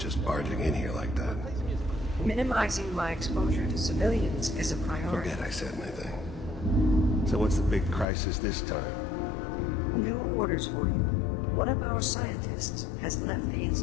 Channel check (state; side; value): drops out; right; at 8.1 s